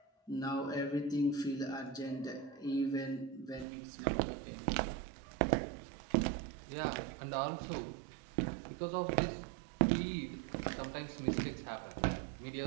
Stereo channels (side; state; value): left; drops out; at 3.7 s